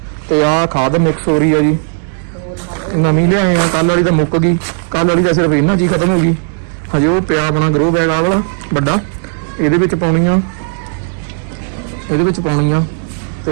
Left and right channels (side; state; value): left; silent; digital silence